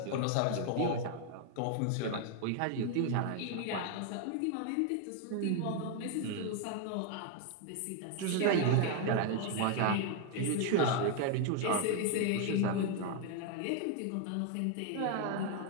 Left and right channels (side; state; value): both; different; correlation 0.00